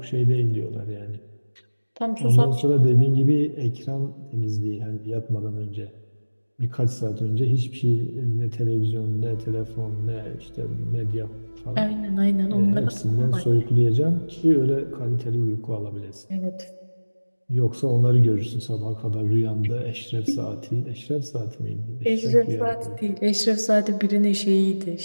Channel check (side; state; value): both; inverted; correlation -1.00